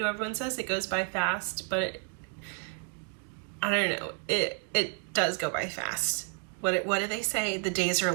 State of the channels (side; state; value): left; quieter; 38.1 dB